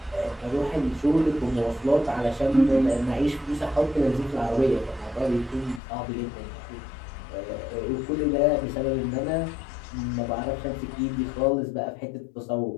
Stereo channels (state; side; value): drops out; right; at 5.8 s